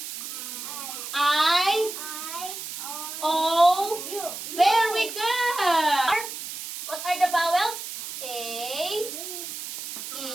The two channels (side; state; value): right; noise; hiss, 8 dB below the sound